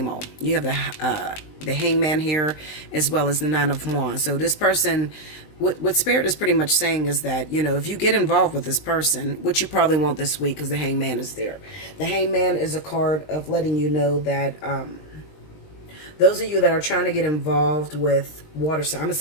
old. You have the Hangman here as well as the Nine of Wands. So this person, what Spirit is pretty much saying is that, if you get involved with this person, which you probably won't this week because the Hangman is there. The Hangman is a card of letting you know that those of you that are trying to get involved with water signs, I'm going to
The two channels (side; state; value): right; late; 20 ms